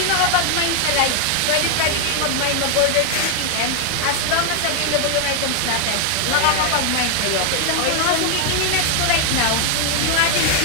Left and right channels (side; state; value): both; different; correlation 0.00